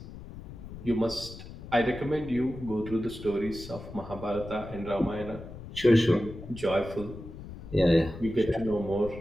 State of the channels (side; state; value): left; noise; rumble, 13 dB below the sound